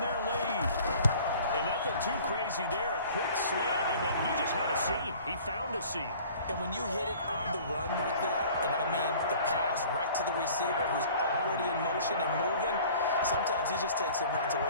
their lead. And nothing too crazy there. A quick slant, and then he just had a seam. He found a seam. And when you hit it on the run like that, and I mean the pass right to the receiver who's already in motion and moving, sometimes he just takes and runs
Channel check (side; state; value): both; inverted; correlation -0.48